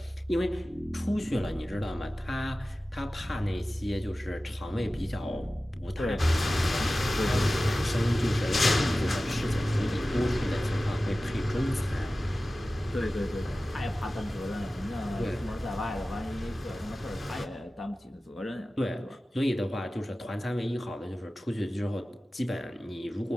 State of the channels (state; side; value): normal; both; correlation 0.96